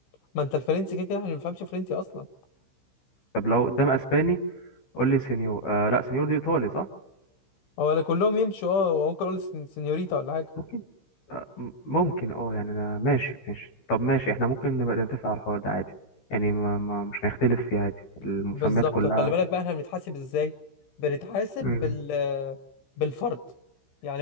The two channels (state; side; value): late; right; 15 ms